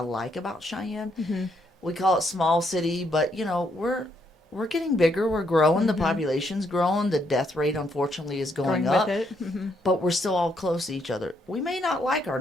like about Cheyenne. We call it small city, but we're getting bigger. We're growing. The population's growing. The death rate, unfortunately, is going up. with it. But we're still all close to each other. We may not like our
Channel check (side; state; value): both; normal; correlation 0.74